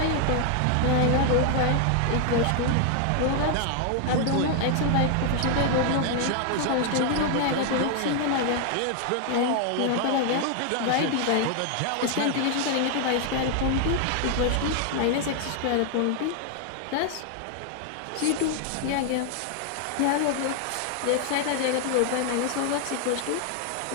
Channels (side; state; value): both; different; correlation 0.00